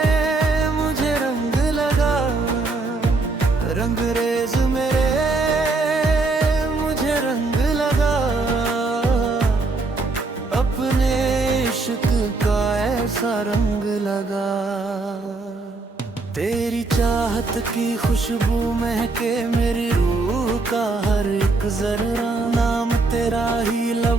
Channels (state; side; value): quieter; left; 3.6 dB